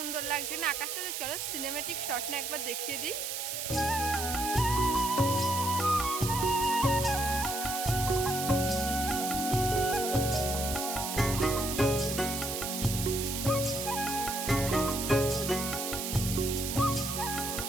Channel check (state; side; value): noise; right; hiss, 4 dB below the sound